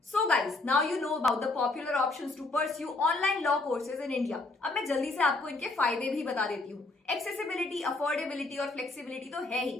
So guys, now you know about the popular options to pursue online law courses in India. अब मैं जल्दी से आपको इनके फायदे भी बता देती हूँ। एक्सेसिबिलिटी, अफोर्डेबिलिटी और फ्लेक्सिबिलिटी तो है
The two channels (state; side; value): quieter; right; 3.2 dB